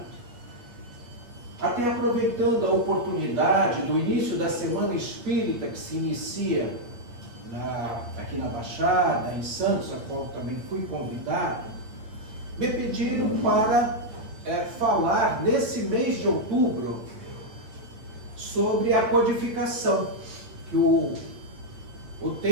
Até aproveitando a oportunidade do início da Semana Espírita que se inicia aqui na Baixada, em Santos, a qual também fui convidado, me pediram para falar nesse mês de outubro sobre a codificação, que o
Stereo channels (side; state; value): left; late; 8.6 ms